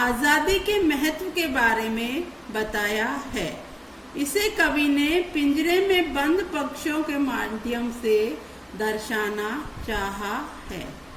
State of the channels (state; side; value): identical; both; correlation 1.00